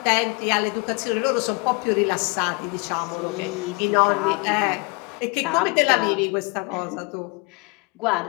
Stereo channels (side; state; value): right; quieter; 29.2 dB